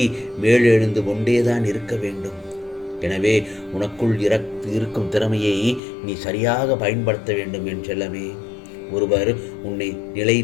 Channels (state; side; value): drops out; right; at 5.8 s